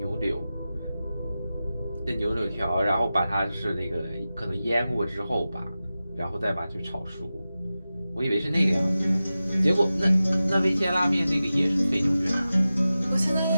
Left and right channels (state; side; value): inverted; both; correlation -0.94